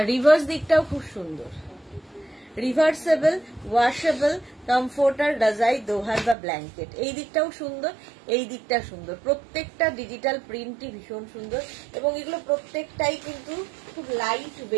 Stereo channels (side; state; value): left; drops out; at 6.4 s